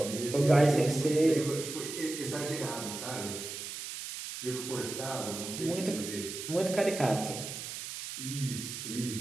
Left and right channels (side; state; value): right; noise; hiss, 8 dB below the sound